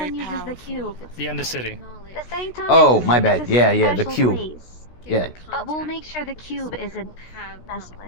uses the cube. The Undercity. The sanctum Oh, is my is bad. a Yeah, yeah, the special cube. place. Yeah, But we'll make sure the cube isn't messed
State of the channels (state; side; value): late; right; 16 ms